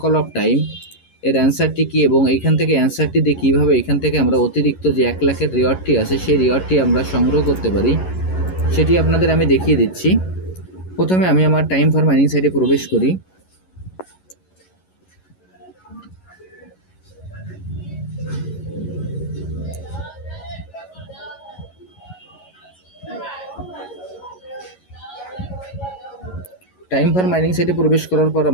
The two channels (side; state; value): right; late; 11 ms